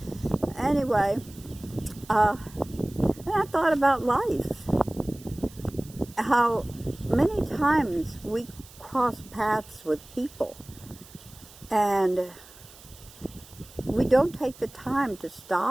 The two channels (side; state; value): right; noise; hiss, 21 dB below the sound